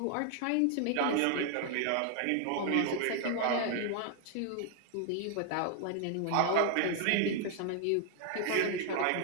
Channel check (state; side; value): different; both; correlation 0.00